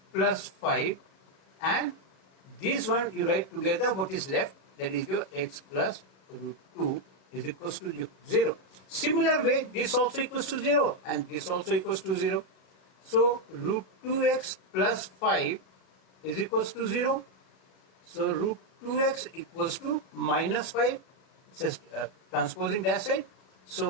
plus 5 and this one you write together, what is left, that is your x plus root 2 is equals to 0. Similar way, this also equals to 0 and this also equals to 0. So root 2x plus 5 is equals to 0. So root 2x equals to minus 5. It says transposing that side.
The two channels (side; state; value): right; late; 37 ms